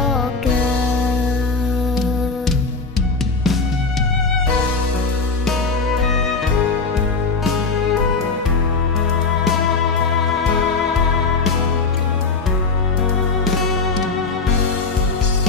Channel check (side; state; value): right; quieter; 4.2 dB